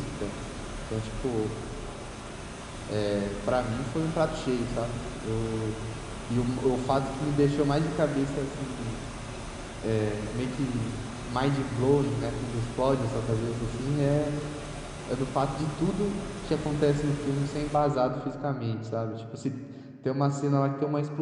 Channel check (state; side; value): identical; both; correlation 1.00